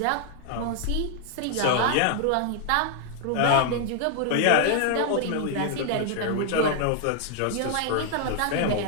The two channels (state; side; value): different; both; correlation 0.00